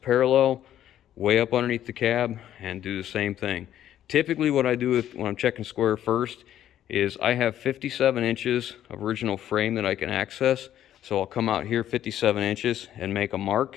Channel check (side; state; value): right; quieter; 11.4 dB